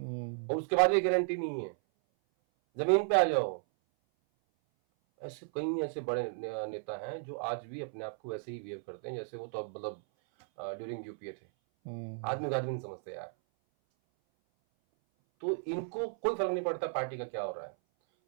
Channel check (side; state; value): left; silent; 55 dB below the other